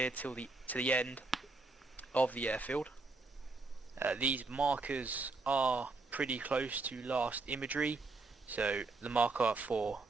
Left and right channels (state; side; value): quieter; left; 3.6 dB